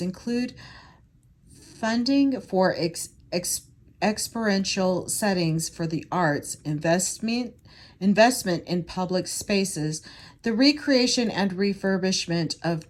include funding for experiential settings for the arts, investment in public spaces, the recreation and refurbishment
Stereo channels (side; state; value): both; identical; correlation 1.00